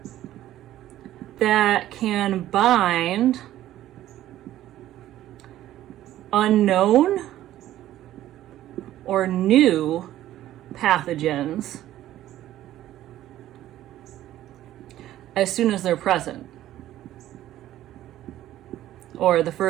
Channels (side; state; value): left; quieter; 13.5 dB